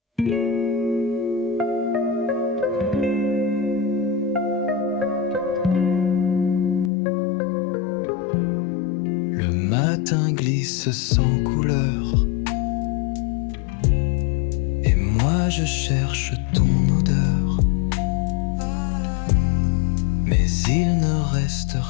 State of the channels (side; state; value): right; drops out; at 6.9 s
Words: Le matin glisse sans couleur, et moi je cherche ton odeur. Mais il ne reste